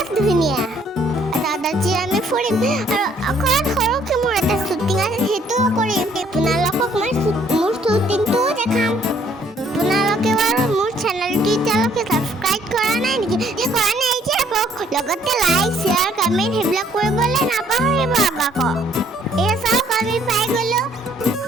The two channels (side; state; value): both; normal; correlation 0.63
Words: ধুনীয়া। আজি আমি ফুৰিম আৰু অকণমান সৰুকৈ মোৰ এটা শ্বুটিং আছে, সেইটোও কৰিম। আপোনালোকক মই মোৰ শ্বুটিংটোও দেখাম। আপোনালোকে বাৰু মোৰ চেনেলটো এতিয়ালৈকে ছাবস্ক্ৰাইব কৰা নাই নেকি? কৰা নাই যে লগতে লাইক শ্বেয়াৰ কমেণ্ট সেইবিলাক কৰিবলৈ নাপাহৰিব আকৌ। এই চাওক আমি পাই গ'লো।